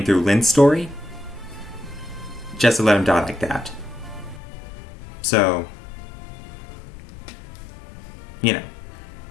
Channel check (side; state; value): right; drops out; at 4.4 s